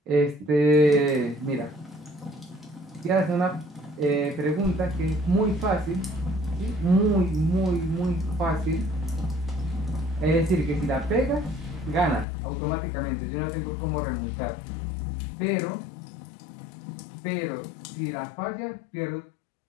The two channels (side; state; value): right; drops out; at 12.2 s